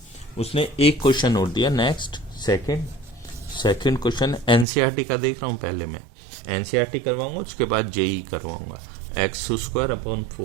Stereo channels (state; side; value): drops out; left; at 4.7 s